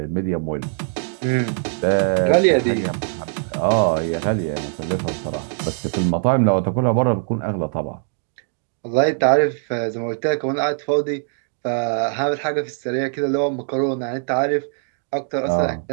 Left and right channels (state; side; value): silent; left; digital silence